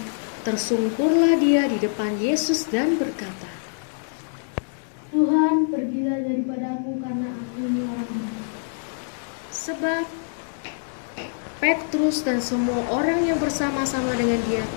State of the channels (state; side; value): silent; right; digital silence